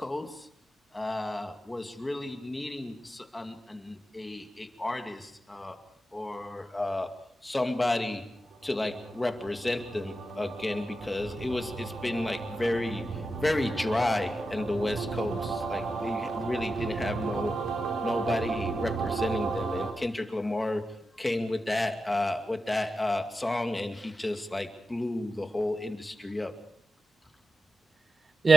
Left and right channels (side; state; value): both; normal; correlation 0.90